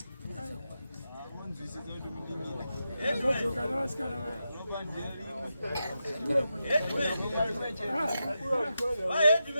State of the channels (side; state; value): both; inverted; correlation -0.88